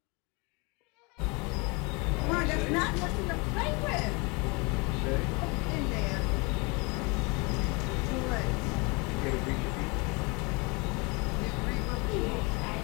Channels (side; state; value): right; quieter; 28.9 dB